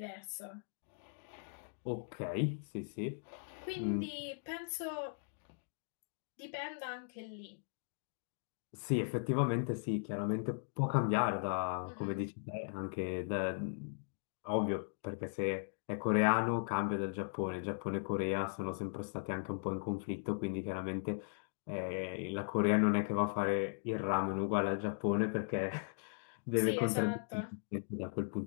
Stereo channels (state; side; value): silent; right; digital silence